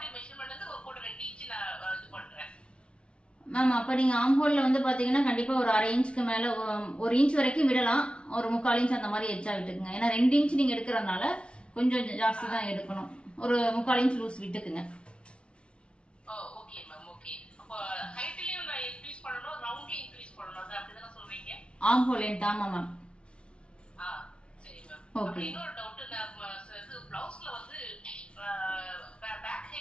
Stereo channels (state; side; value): late; right; 0.057 ms